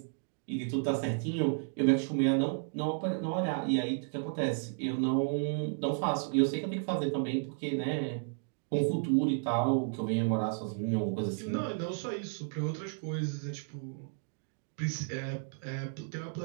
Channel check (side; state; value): left; silent; digital silence